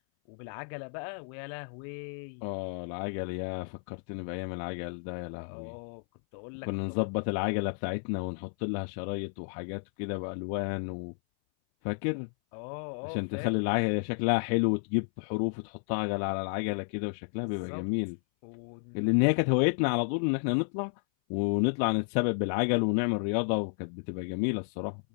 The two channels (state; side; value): silent; right; 57 dB below the other